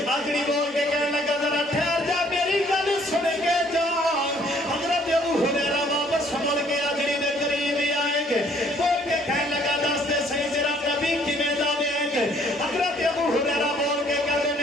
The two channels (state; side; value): normal; both; correlation 0.62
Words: آجڑی بول کے کہنے لگا ذرا ٹھہر جا میری گل سن کے جا حضرت ابو ہریرہ واپس مڑ کے آجڑی دے قریب آئیں گے بول کے کہنے لگا دس دے صحیح تیرا نبی کیویں دا وے حضرت ابو ہریرہ بول کے کہتے